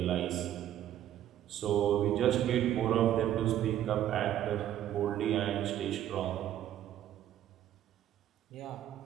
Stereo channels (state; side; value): quieter; left; 11.7 dB